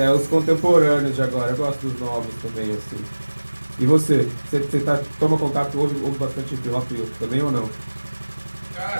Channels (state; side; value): inverted; both; correlation -1.00